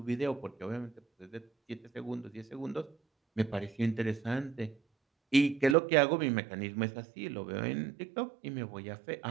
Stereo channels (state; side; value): drops out; left; at 5.8 s